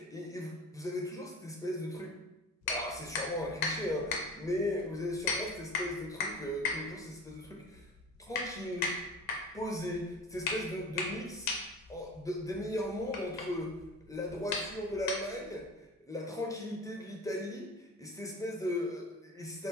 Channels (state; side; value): normal; both; correlation 0.37